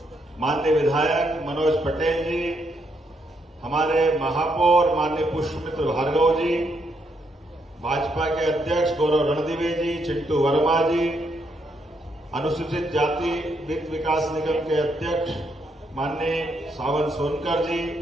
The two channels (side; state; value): both; normal; correlation 0.76